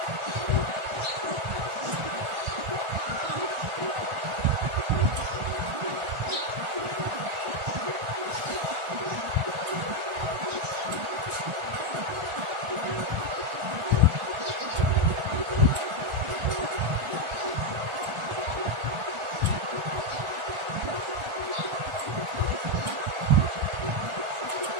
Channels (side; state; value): left; late; 1.4 ms